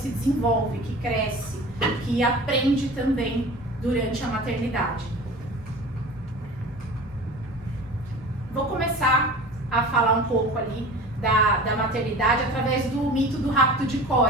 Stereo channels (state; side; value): normal; both; correlation 0.38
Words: desenvolve, que cresce, que aprende também durante a maternidade. Vou começar falar um pouco ali da maternidade através do mito do rapto de